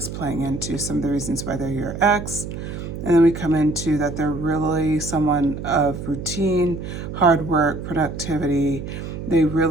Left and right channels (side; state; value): right; noise; hum, 8 dB below the sound